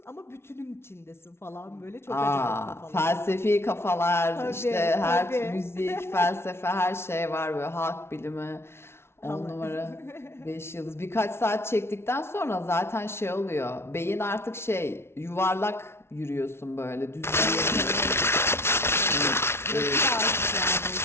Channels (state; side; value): late; right; 0.12 ms